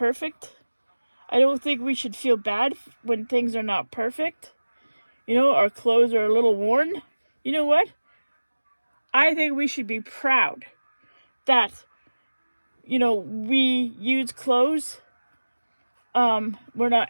I don't think we should feel bad when things are not perfect. You know, our clothes are a little worn. You know what? I think we should be proud that, you know, we use clothes. We're not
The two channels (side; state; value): both; inverted; correlation -1.00